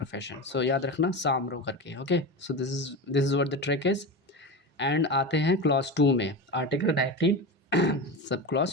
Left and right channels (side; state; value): both; normal; correlation 0.23